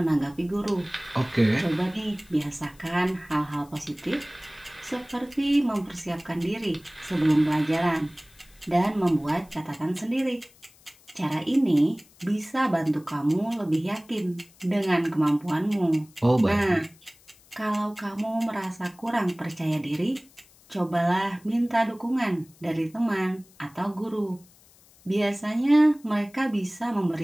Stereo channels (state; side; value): noise; left; hiss, 28 dB below the sound